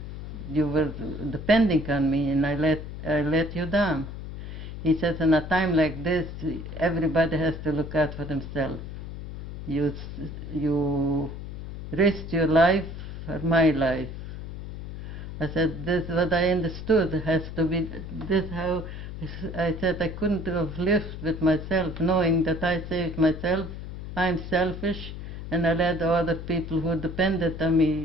were depending on me, and I let you down. He says, in a time like this, everybody has to look out for themselves. You risk your life for my life. I said, this is what I understood. It has to be this how. I said I couldn't have lived with myself knowing that I saved myself. I'm selfish, and I let the other people who depended on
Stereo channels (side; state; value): left; noise; hum, 9 dB below the sound